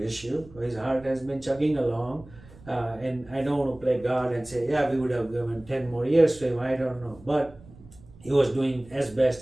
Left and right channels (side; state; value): right; noise; rumble, 22 dB below the sound